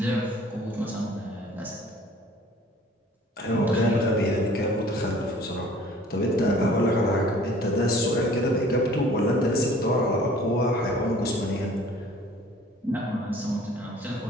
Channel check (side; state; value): both; normal; correlation 0.51